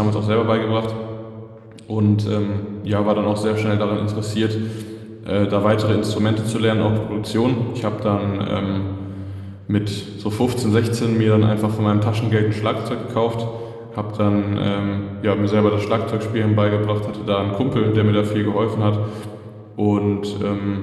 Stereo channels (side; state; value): both; identical; correlation 1.00